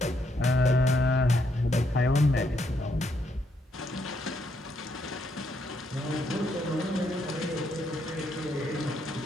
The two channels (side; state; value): both; normal; correlation 0.75